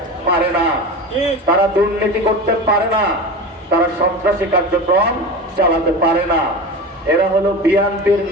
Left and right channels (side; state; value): both; normal; correlation 0.28